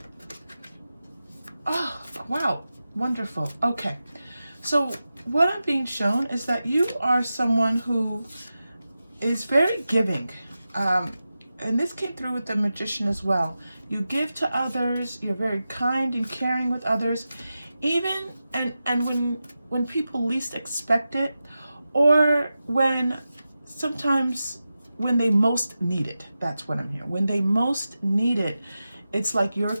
oh, wow, wonderful. Okay, so what I'm being shown is that you are someone who is very giving. And this came through with the Magician as well. You give to others, you're very kind and caring with others, even and when people least expect it, or sometimes when they most need it. That's what I'm hearing. When they most need it, it's like your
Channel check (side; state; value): both; inverted; correlation -0.93